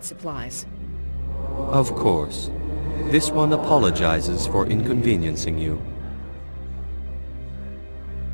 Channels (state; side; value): inverted; both; correlation -1.00